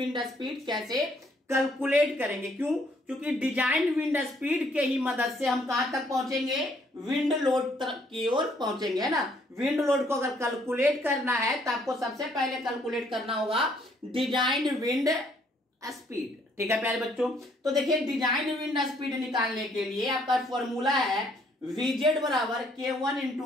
स्पीड कैसे कैलकुलेट करेंगे। क्यों? क्योंकि डिजाइन विंड स्पीड के ही मदद से हम कहां तक पहुंचेंगे? विंड लोड की ओर पहुंचेंगे, है ना। विंड लोड को अगर कैलकुलेट करना है तो आपको सबसे पहले कैलकुलेट करना होगा डिजाइन विंड स्पीड। ठीक है प्यारे बच्चों। तो देखिए डिजाइन विंड स्पीड निकालने के लिए आपका फॉर्मूला है Vz बराबर K1 into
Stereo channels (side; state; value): both; normal; correlation 0.66